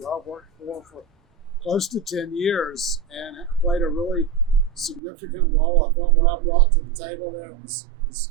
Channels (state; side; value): drops out; left; at 5.0 s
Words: I worked for close to 10 years and played a really significant role. I felt what I brought to the table there was